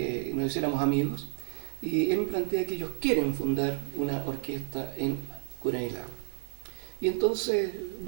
nos hiciéramos amigos. Y él me plantea que ellos quieren fundar una orquesta en Coronel Lago. Y entonces,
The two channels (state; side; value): silent; left; digital silence